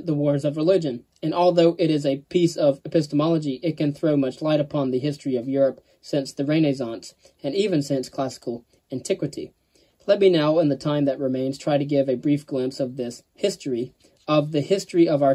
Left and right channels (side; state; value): both; identical; correlation 1.00